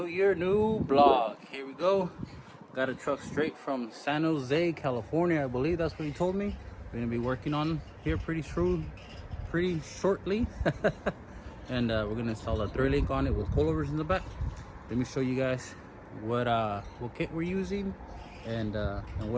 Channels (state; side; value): identical; both; correlation 1.00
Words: another new vlog. Here we go. Got a truck straight from San Jose, California. I believe that's what he told me. We're gonna be working on here pretty shortly. And we're gonna install a thread link on it with coilovers in the back. Let me show you guys what kit we're using and what